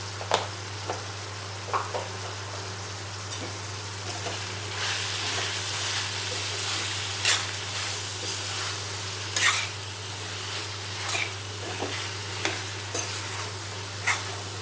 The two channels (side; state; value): both; identical; correlation 1.00